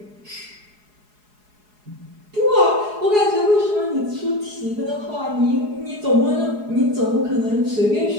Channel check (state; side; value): late; left; 4.8 ms